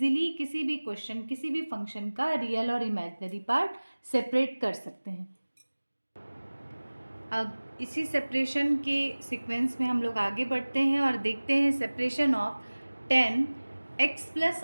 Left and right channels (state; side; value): inverted; both; correlation -1.00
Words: किसी भी क्वेश्चन, किसी भी फंक्शन का रियल और इमेजिनरी पार्ट सेपरेट कर सकते हैं। अब इसी सेपरेशन के सीक्वेंस में हम लोग आगे बढ़ते हैं और देखते हैं separation of 10x plus